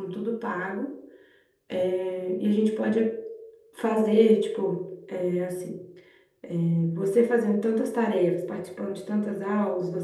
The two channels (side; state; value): both; identical; correlation 1.00